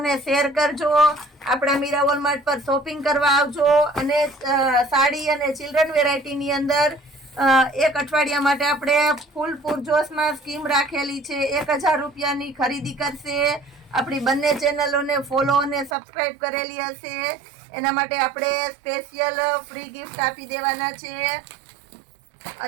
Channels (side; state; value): left; drops out; at 15.9 s